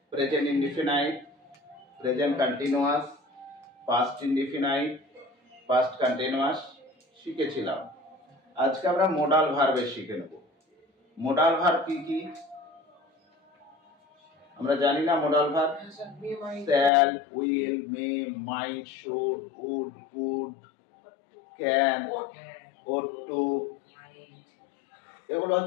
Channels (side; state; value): right; drops out; at 16.9 s